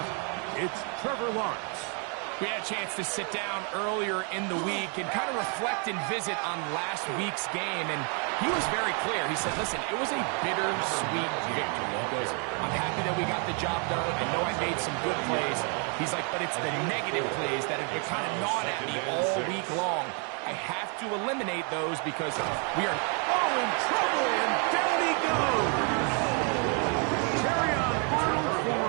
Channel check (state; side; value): quieter; left; 38.0 dB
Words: It's Trevor Lawrence. We had a chance to sit down earlier in the week and kind of reflect and visit on last week's game, and he was very clear. He said, listen, it was a bittersweet victory. He goes, I'm happy that we got the job done. I know I made some good plays. He's like, but it's the negative plays that have been kind of gnawing at me all week long. I have to eliminate those because we are in trouble, and down he goes.